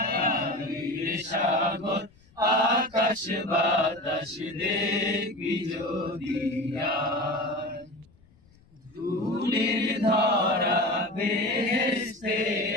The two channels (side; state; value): left; noise; rumble, 30 dB below the sound